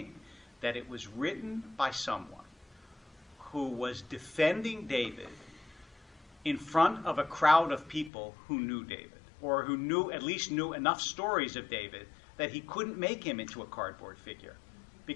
that it was written by someone who was defending David in front of a crowd of people who knew David, or who at least knew enough stories of David that he couldn't make him into a cardboard figure.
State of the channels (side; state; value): right; drops out; at 8.1 s